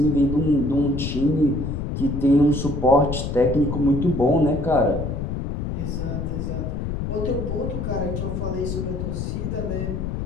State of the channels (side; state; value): left; noise; rumble, 3 dB below the sound